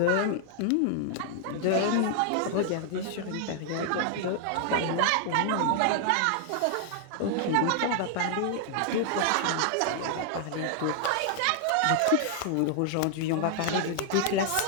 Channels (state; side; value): different; both; correlation 0.00